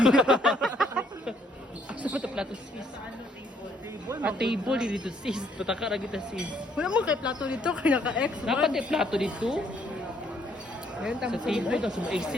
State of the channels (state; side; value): normal; both; correlation 0.67